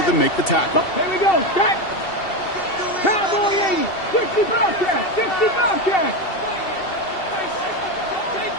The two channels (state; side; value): late; right; 2.7 ms